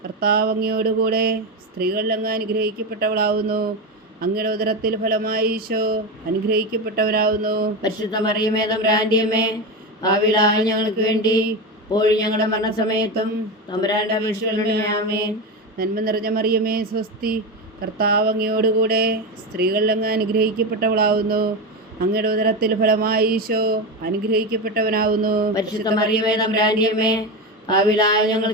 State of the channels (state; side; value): normal; both; correlation 0.17